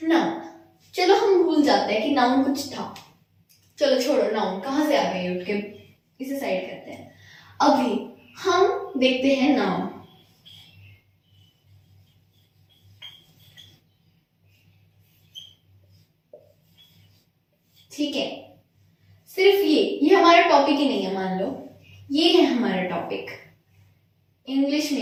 चलो हम भूल जाते हैं कि नाउन कुछ था। चलो छोड़ो, नाउन कहाँ से आ गई, उठ के इसे साइड करते हैं। अभी हम देखते हैं नाउन। ठीक है, सिर्फ ये हमारा टॉपिक ही नहीं है। मान लो ये है हमारा टॉपिक, इंग्लिश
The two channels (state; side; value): identical; both; correlation 1.00